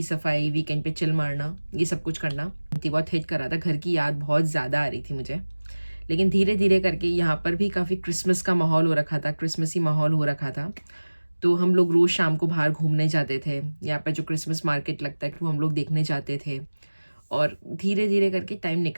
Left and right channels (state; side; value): inverted; both; correlation -1.00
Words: सफाई, वीकेंड पे चिल मारना, ये सब कुछ करना। बहुत हिट कर रहा था, घर की याद बहुत ज़्यादा आ रही थी मुझे। लेकिन धीरे धीरे करके यहाँ पर भी काफ़ी क्रिसमस का माहौल हो रखा था, क्रिसमसी माहौल हो रखा था। तो हम लोग रोज़ शाम को बाहर घूमने जाते थे, यहाँ पर जो क्रिसमस मार्केट लगता है वो हम लोग देखने जाते थे। और धीरे धीरे करके टाइम